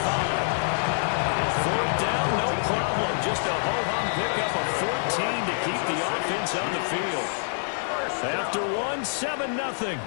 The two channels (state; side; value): silent; right; digital silence